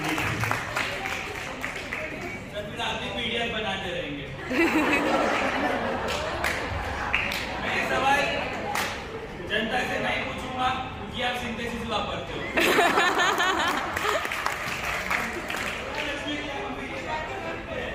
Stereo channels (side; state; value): both; identical; correlation 1.00